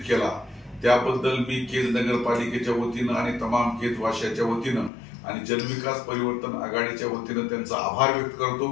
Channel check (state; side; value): drops out; right; at 4.9 s